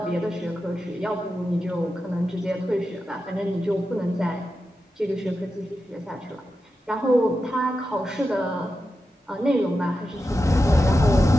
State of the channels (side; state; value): both; normal; correlation 0.90